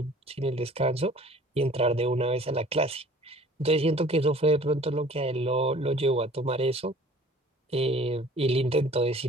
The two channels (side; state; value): both; normal; correlation 0.50